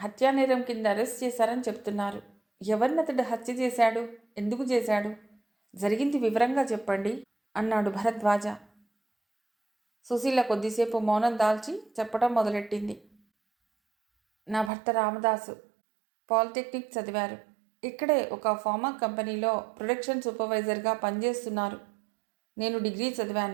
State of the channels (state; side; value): drops out; left; at 14.7 s